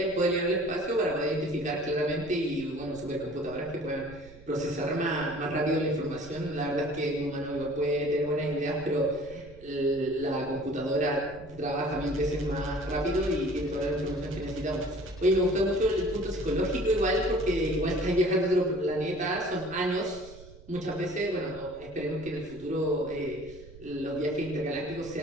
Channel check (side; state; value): right; noise; rumble, 19 dB below the sound